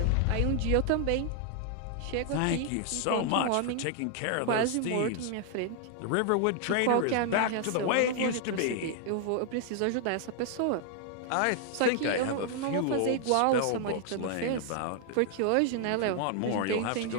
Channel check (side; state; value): both; different; correlation 0.00